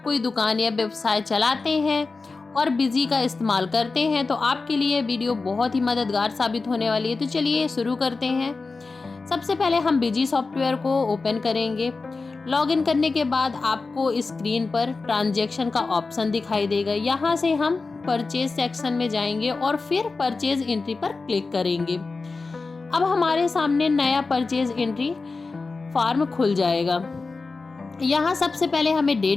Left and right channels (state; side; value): quieter; right; 4.0 dB